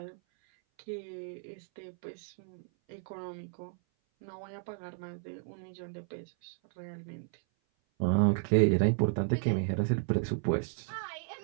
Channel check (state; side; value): silent; left; 55 dB below the other